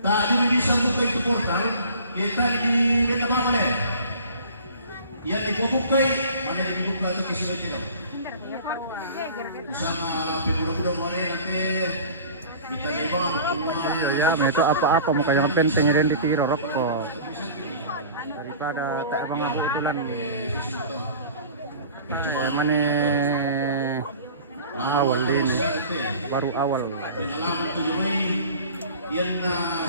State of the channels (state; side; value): inverted; both; correlation -0.44